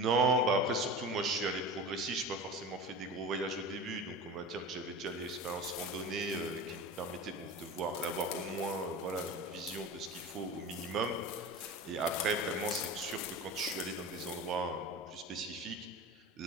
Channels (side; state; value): both; normal; correlation 0.32